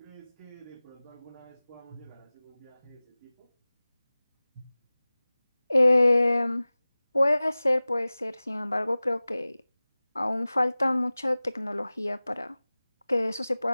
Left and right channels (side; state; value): both; inverted; correlation -0.98